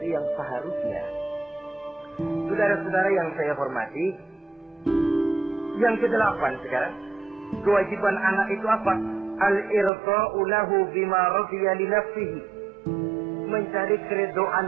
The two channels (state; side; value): drops out; left; at 9.9 s